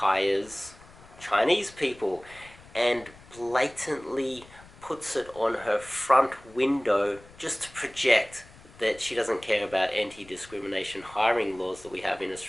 Chinese people and blatantly puts it on her front window just to project that she doesn't care about anti-discrimination hiring laws that we have in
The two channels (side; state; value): left; noise; rumble, 22 dB below the sound